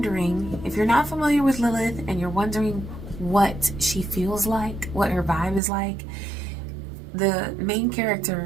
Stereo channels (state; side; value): drops out; left; at 5.6 s